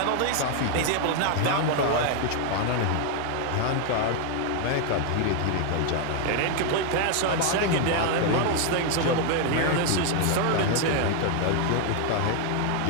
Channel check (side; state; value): both; different; correlation 0.00